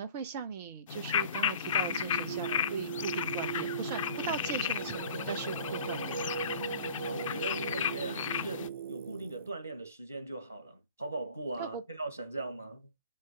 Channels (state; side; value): inverted; both; correlation -0.45